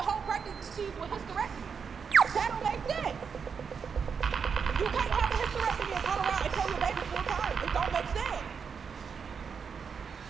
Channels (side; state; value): left; quieter; 6.2 dB